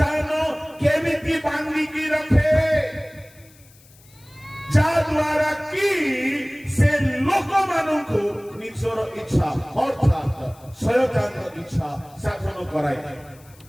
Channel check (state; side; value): noise; left; hiss, 27 dB below the sound